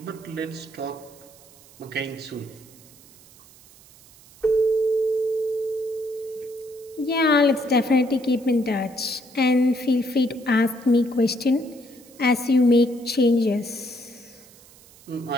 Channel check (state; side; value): noise; right; hiss, 24 dB below the sound